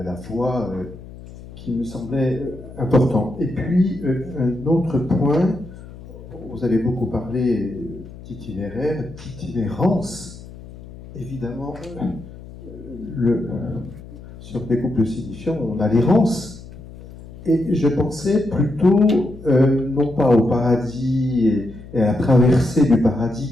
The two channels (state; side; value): noise; left; hum, 16 dB below the sound